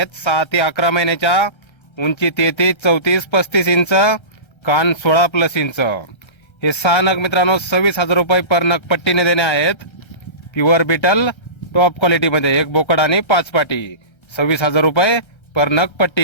6 ते 11 महिन्याच्या, उंची 33, 34, 35 इंच, कान 16+ इंच. हे 6 नग मित्रांनो 26,000 रुपये पर नग पट्टीने देणे आहेत. प्युअर बिटल टॉप क्वालिटी मध्ये एक बोकड आणि 5 पाटी, 26,000 रुपये पर नग पट्टी.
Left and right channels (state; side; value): late; right; 1.3 ms